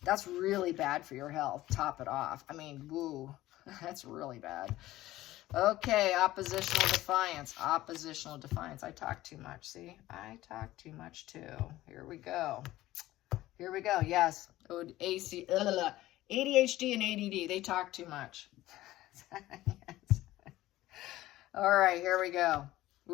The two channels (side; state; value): right; quieter; 16.1 dB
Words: That's really bad for your health. Top it off. I mean, woo. That's really bad. Okay, oppositional defiance. Oppositional defiance. I talk too much. See? I talk too much too. Here we go. Here we go. Yes. ADHD and ADD. They talk too much. Yes. All right, here we go.